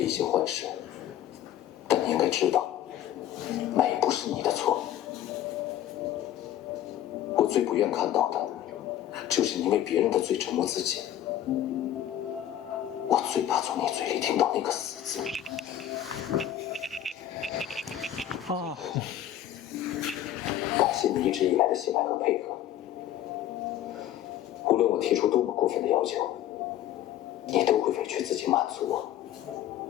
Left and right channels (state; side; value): quieter; right; 11.7 dB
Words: 一些坏事，但你应该知道，美不是你的错。我最不愿看到的，就是你为别人的罪折磨自己。我最怕从你嘴里听到那个死字。感谢你一直以来的信赖和配合。无论我提出多么过分的要求，你都会委屈自己满足我。